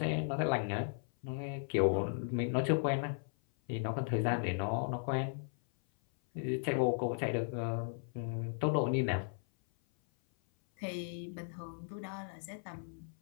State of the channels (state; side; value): silent; right; 54 dB below the other